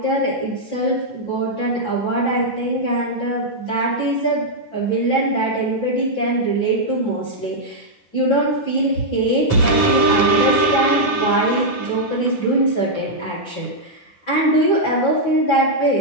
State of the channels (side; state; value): right; late; 9.3 ms